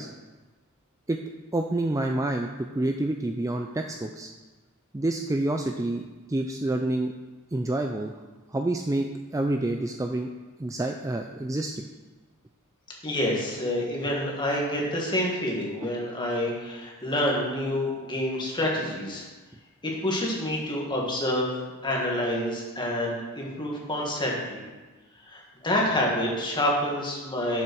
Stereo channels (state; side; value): normal; both; correlation 0.48